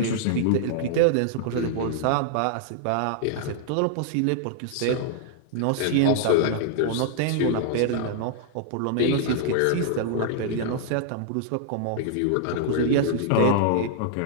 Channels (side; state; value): both; different; correlation -0.01